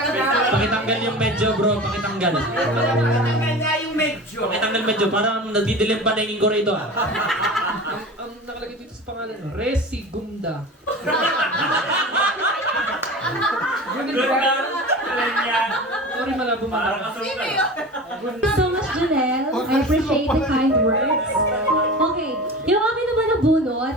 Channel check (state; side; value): normal; both; correlation 0.33